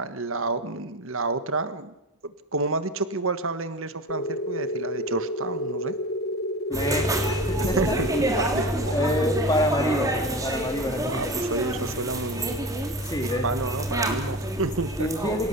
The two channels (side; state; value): both; normal; correlation 0.29